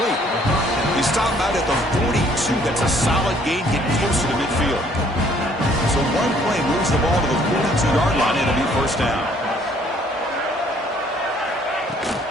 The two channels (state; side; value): normal; both; correlation 0.62